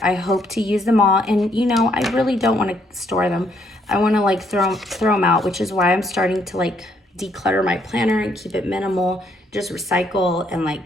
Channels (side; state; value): both; normal; correlation 0.70